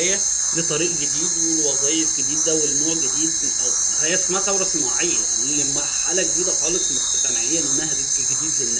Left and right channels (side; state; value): left; noise; hum, 28 dB below the sound